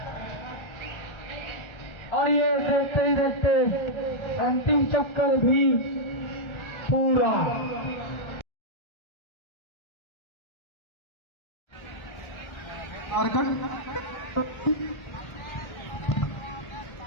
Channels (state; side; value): late; right; 1.3 ms